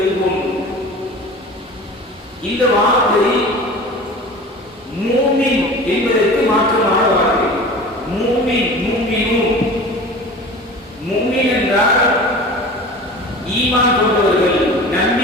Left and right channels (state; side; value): normal; both; correlation 0.38